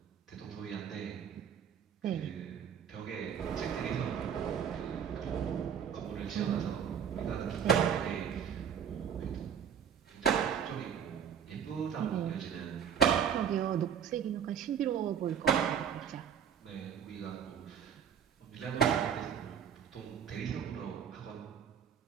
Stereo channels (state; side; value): quieter; left; 8.2 dB